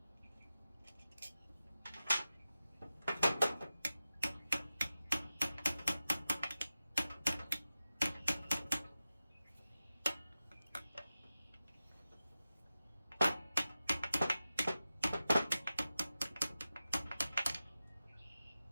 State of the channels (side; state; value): both; inverted; correlation -0.93